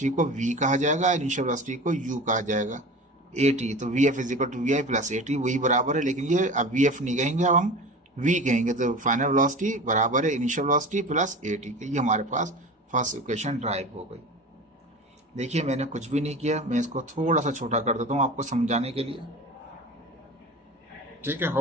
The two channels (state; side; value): normal; both; correlation 0.34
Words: को v कहा जाएगा, इनिशियल वेलोसिटी को u कहा जाएगा, ए टी। तो v F is equal to we I plus A t, वही बराबर है, लेकिन ये अब वी एफ नहीं कहेंगे, अब हम v कहेंगे। तो फाइनल वेलोसिटी बराबर है initial velocity plus A T के। ये हमारे पास फर्स्ट इक्वेशन ड्राइव हो गई। देखिए मैंने कुछ भी नहीं किया, मैं इसको थोड़ा सा छोटा कर देता हूँ आपको समझाने के लिए। ठीक है,